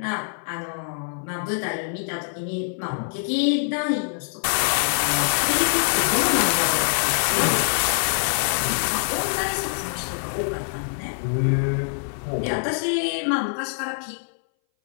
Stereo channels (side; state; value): right; silent; 60 dB below the other